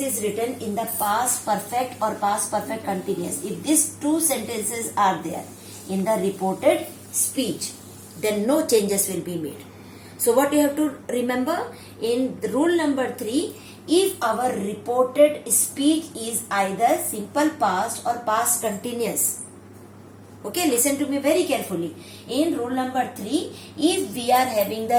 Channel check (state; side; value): identical; both; correlation 1.00